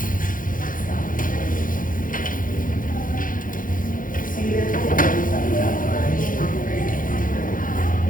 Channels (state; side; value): late; right; 0.40 ms